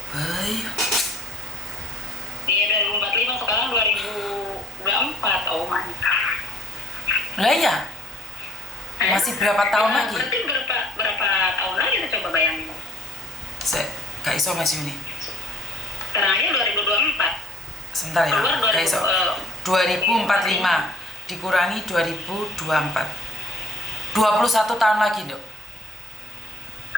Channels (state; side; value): normal; both; correlation 0.56